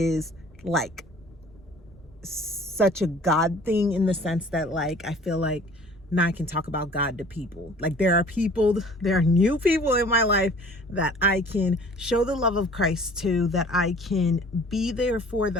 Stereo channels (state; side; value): normal; both; correlation 0.49